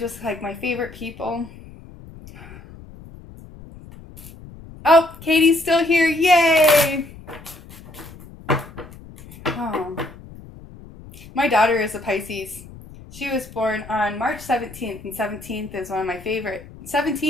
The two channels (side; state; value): left; noise; rumble, 18 dB below the sound